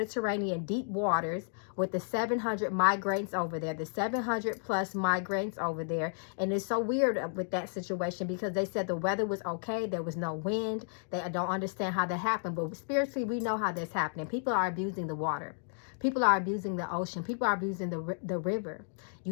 deep waters with the 700 migrants over there, the 700 plus migrants over there. And it's so weird with that situation because they said the weather was okay. There was no wind. They don't understand how that happened. But spiritually, we know how that's happening. People are abusing the water. People are abusing the ocean. People are abusing the river.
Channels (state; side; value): silent; right; digital silence